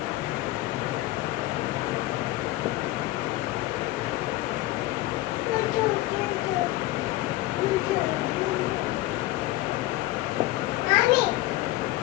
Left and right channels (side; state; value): right; quieter; 17.3 dB